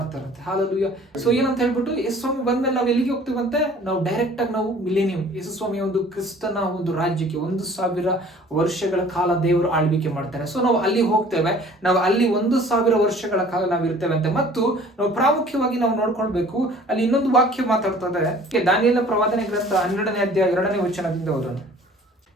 ಹಾಲೆಲೂಯ. ಸೊ ಏನಂತ ಹೇಳ್ಬಿಟ್ಟು, ಯೇಸು ಸ್ವಾಮಿ ಬಂದ್ಮೇಲೆ ನಾವು ಎಲ್ಲಿಗೆ ಹೋಗ್ತೀವಂತೆ, ನಾವು ಡೈರೆಕ್ಟ್ ಆಗಿ ನಾವು ಮಿಲೇನಿಯಂ, ಯೇಸು ಸ್ವಾಮಿಯ ಒಂದು ಕ್ರಿಸ್ತನ ಒಂದು ರಾಜ್ಯಕ್ಕೆ 1000 ವರ್ಷಗಳ ಕಾಲ ದೇವರು ಆಳ್ವಿಕೆ ಮಾಡ್ತಾರೆ. ಸೊ ನಾವು ಅಲ್ಲಿ ಹೋಗ್ತೇವೆ, ನಾವು ಅಲ್ಲಿ 1000 ವರ್ಷಗಳ ಕಾಲ ನಾವು ಇರ್ತೇವೆ ಅಂತೆ. ಮತ್ತು ನಾವು ಪ್ರಾಮುಖ್ಯವಾಗಿ ನಾವು ನೋಡ್ಕೊಳ್ಬೇಕು, ಅಲ್ಲಿ ಇನ್ನೊಂದು ವಾಕ್ಯ ಮಾತಾಡ್ತದೆ, ದಾನಿಯೇಲನ ಪ್ರವಾದನೆ ಗ್ರಂಥ 12ನೇ ಅಧ್ಯಾಯ 2ನೇ ವಚನದಿಂದ ಓದೋಣ.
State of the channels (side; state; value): both; normal; correlation 0.50